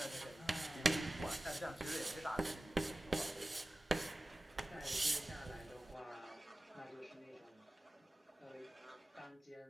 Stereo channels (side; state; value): both; normal; correlation 0.96